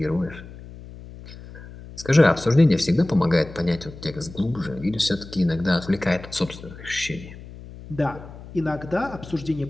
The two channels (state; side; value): noise; left; hum, 16 dB below the sound